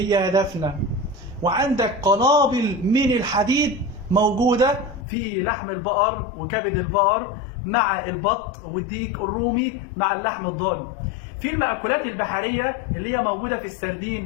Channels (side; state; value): right; drops out; at 5.1 s